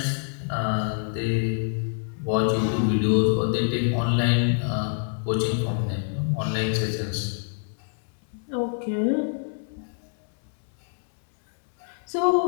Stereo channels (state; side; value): silent; right; 61 dB below the other